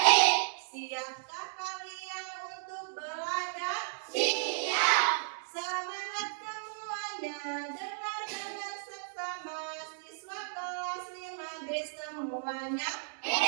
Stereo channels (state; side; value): silent; left; digital silence